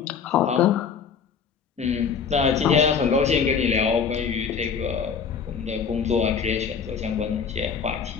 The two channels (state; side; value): quieter; right; 6.4 dB